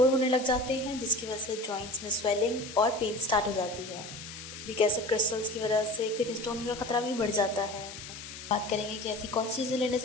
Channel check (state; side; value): noise; left; hiss, 12 dB below the sound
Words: होने लग जाते हैं, जिसकी वजह से जॉइंट्स में स्वेलिंग और पेन स्टार्ट हो जाती है। यूरिक एसिड क्रिस्टल्स की वजह से किडनी स्टोन का खतरा भी बढ़ जाता है। बात करेंगे कि ऐसी कौन सी चीज़ें लेने